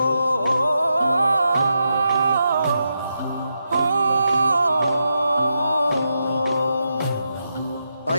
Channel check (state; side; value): inverted; both; correlation -0.85